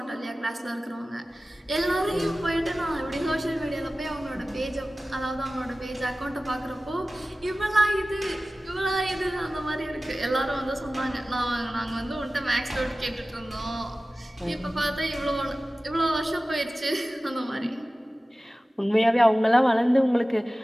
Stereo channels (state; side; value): normal; both; correlation 0.96